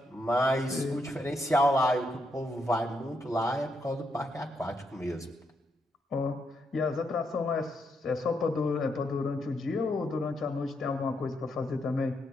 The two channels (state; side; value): normal; both; correlation 0.79